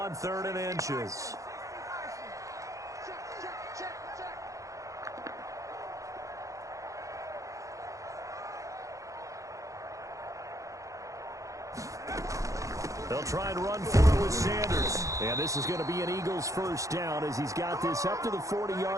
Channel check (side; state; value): left; late; 0.16 ms